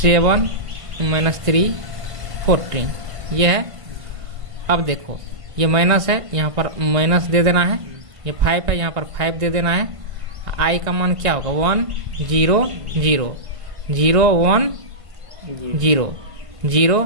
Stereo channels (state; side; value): late; left; 1.5 ms